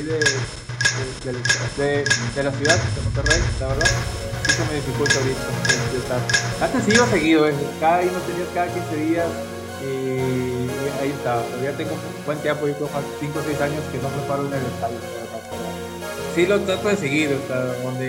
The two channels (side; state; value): both; identical; correlation 1.00